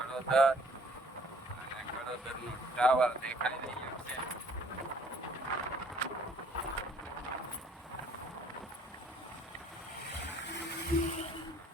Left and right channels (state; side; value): normal; both; correlation 0.58